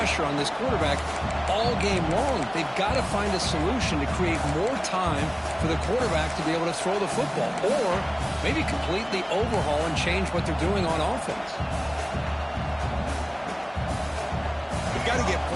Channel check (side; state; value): both; identical; correlation 1.00